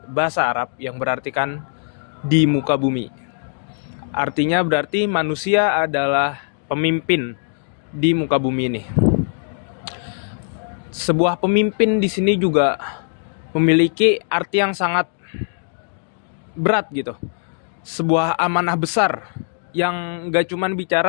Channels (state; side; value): silent; right; digital silence